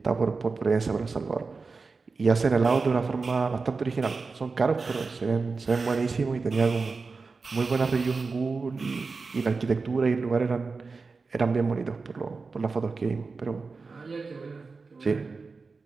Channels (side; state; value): left; quieter; 4.3 dB